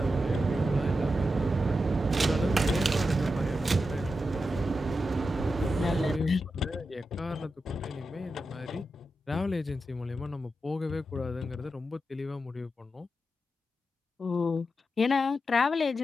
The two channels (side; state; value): both; normal; correlation 0.89